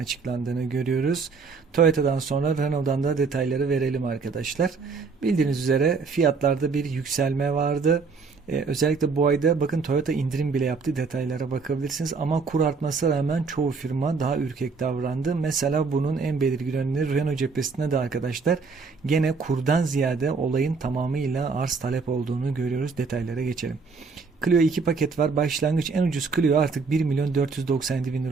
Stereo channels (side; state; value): left; quieter; 4.8 dB